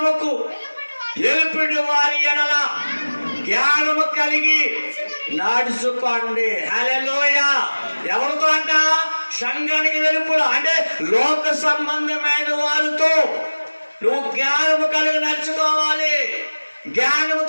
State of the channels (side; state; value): both; inverted; correlation -1.00